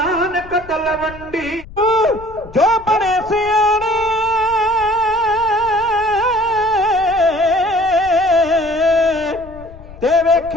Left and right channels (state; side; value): noise; left; rumble, 18 dB below the sound